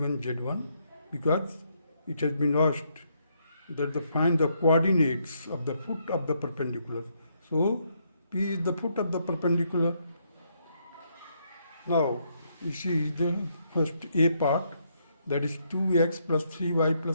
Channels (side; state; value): both; inverted; correlation -0.75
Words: z1 because it has been asked that to find the coordinates of the foot of the perpendicular. So P is the foot of the perpendicular. Now you see the first A part, that is 2x plus 3y